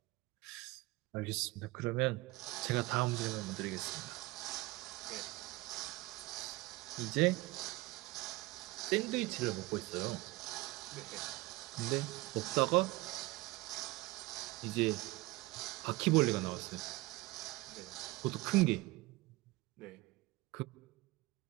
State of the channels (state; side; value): quieter; left; 20.7 dB